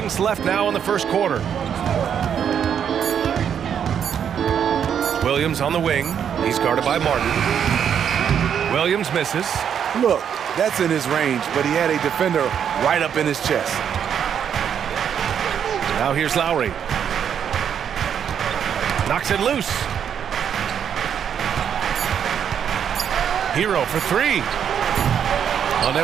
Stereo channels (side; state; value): left; quieter; 8.3 dB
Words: left now in the first quarter. Williams on the wing. He's guarded by Martin. Williams misses. Look, that's in his range, but he had a defender right up in his chest. Now here's Lowry. Knocks it loose. Hero for three.